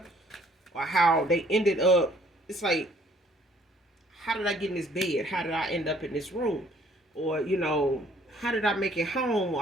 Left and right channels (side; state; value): both; normal; correlation 0.60